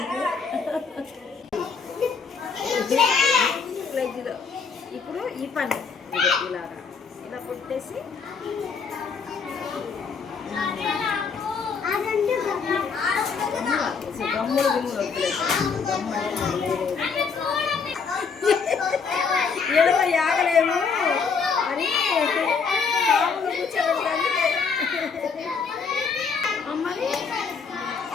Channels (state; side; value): quieter; right; 5.5 dB